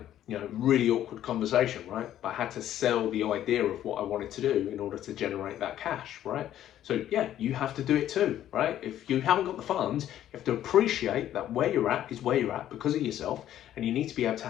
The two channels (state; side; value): quieter; right; 11.8 dB